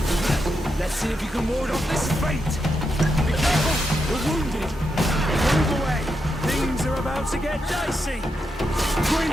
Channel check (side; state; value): both; normal; correlation 0.84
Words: Let's see if you can ward off this feint. Be careful, we're wounded. Move away. Things are about to get dicey.